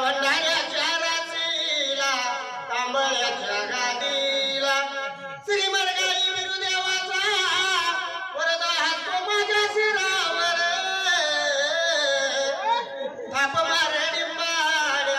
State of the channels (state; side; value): identical; both; correlation 1.00